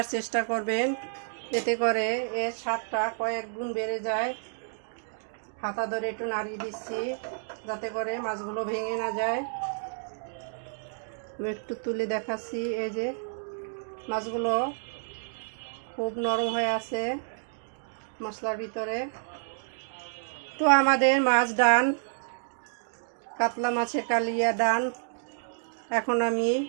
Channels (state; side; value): silent; left; digital silence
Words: চেষ্টা করবেন, এতে করে এর স্বাদটা কয়েক গুণ বেড়ে যায়। হাতা ধরে একটু নাড়িয়ে দিচ্ছি যাতে করে মাছগুলো ভেঙে না যায়। আমি একটু তুলে দেখাচ্ছি, এই যে মাছগুলো খুব নরম হয়ে আছে মশলার ভিতরে। তো আমাদের মাছ ডান, কাতলা মাছের কালিয়া ডান। এখন আমি